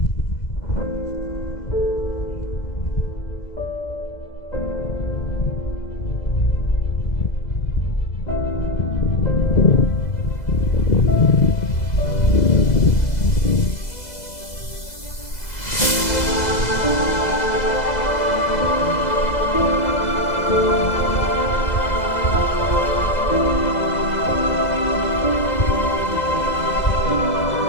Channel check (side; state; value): right; late; 2.0 ms